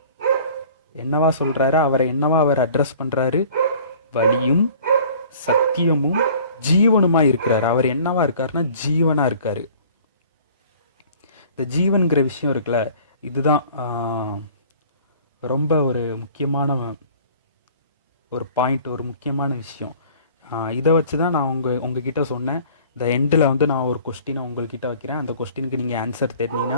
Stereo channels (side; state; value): both; inverted; correlation -0.50